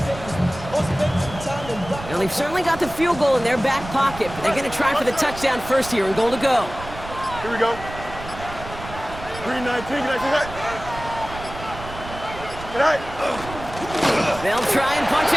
They've certainly got the field goal in their back pocket, but they're going to try for the touchdown first here and goal to go. Here we go. 3-19, They'll try and punch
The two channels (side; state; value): right; noise; rumble, 13 dB below the sound